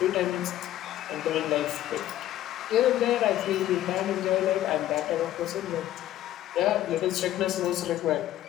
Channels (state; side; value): quieter; right; 13.3 dB